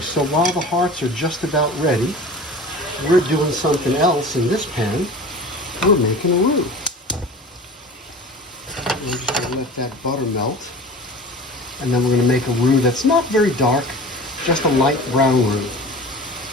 while the hearts are just about ready, we're doing something else in this pan. We're making a roux. We're just going to let that butter melt, and then we're going to make a roux that's not very dark, just a light brown roux.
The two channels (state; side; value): normal; both; correlation 0.37